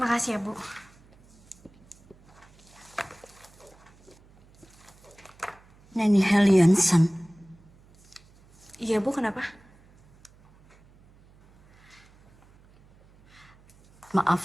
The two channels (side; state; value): right; noise; hum, 28 dB below the sound